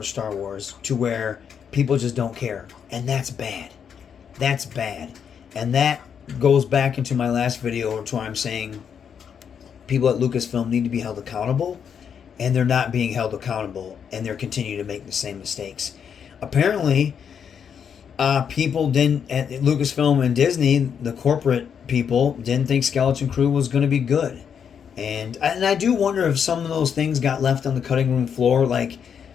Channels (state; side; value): quieter; right; 7.5 dB